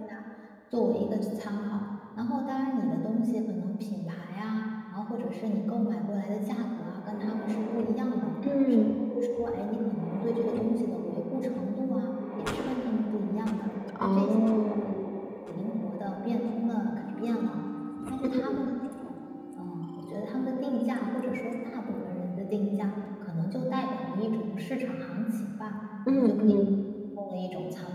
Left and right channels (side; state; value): both; identical; correlation 1.00